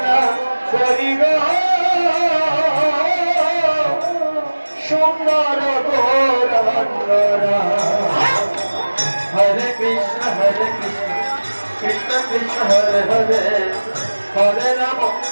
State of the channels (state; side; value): inverted; both; correlation -1.00